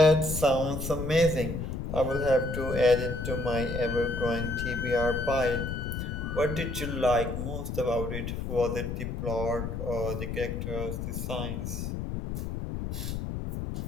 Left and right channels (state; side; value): noise; left; rumble, 4 dB below the sound